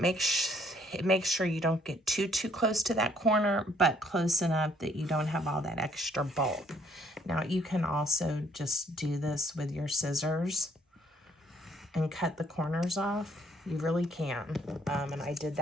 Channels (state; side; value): normal; both; correlation 0.65